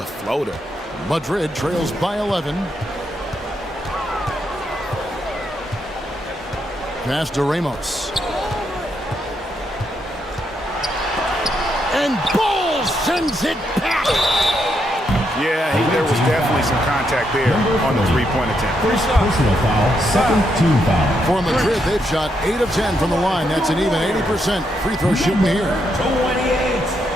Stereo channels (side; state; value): both; normal; correlation 0.79